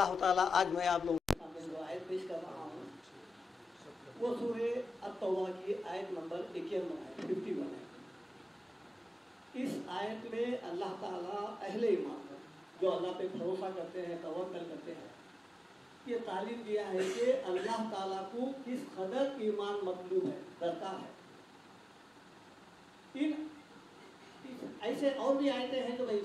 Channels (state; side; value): normal; both; correlation 0.94